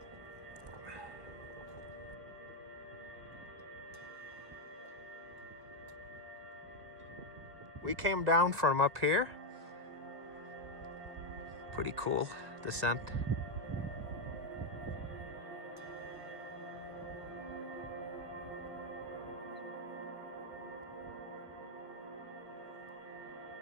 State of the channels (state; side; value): late; left; 2.2 ms